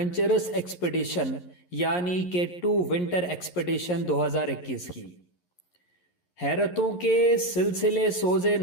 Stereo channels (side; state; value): right; late; 11 ms